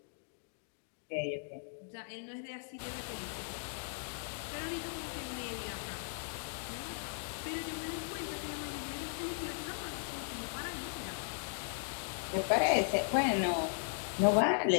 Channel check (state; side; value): silent; right; digital silence